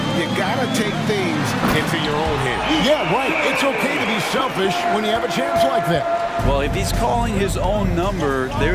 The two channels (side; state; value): both; identical; correlation 1.00